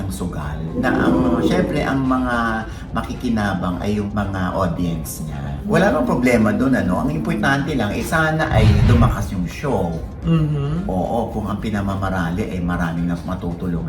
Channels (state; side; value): identical; both; correlation 1.00